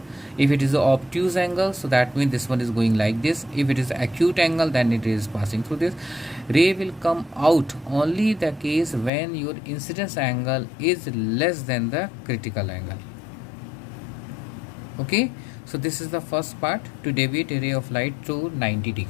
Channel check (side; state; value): right; drops out; at 9.1 s